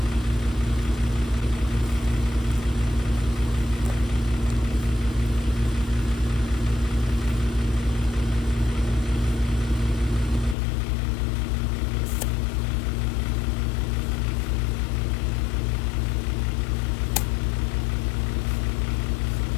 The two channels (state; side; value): drops out; right; at 10.6 s